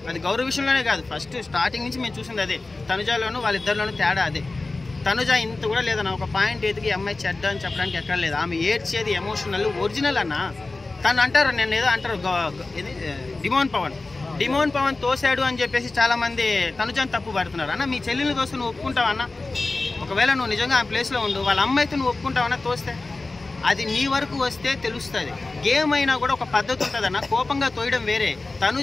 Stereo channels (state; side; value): quieter; right; 3.4 dB